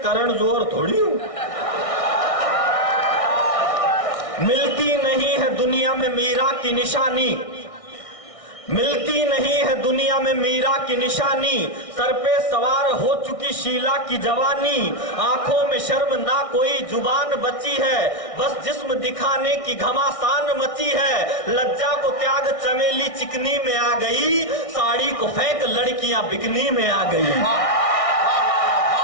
करण जौहर थोड़ी हूं। मिलती नहीं है दुनिया में मीरा की निशानी, मिलती नहीं है दुनिया में मीरा की निशानी, सर पे सवार हो चुकी शीला की जवानी, आंखों में शर्म ना कोई जुबान बची है, बस जिस्म दिखाने की घमासान मची है, लज्जा को त्याग चमेली चिकनी में आ गई, साड़ी को फेंक लड़कियां बिकनी में आ गई।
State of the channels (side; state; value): right; late; 1.6 ms